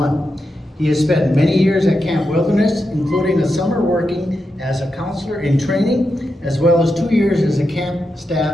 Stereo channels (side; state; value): both; normal; correlation 0.87